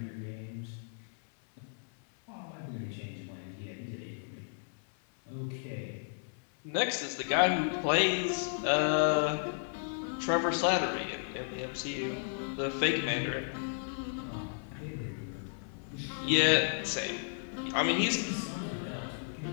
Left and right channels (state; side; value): silent; right; 55 dB below the other